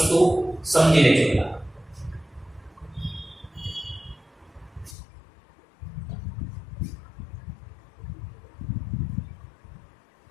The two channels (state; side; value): drops out; right; at 5.0 s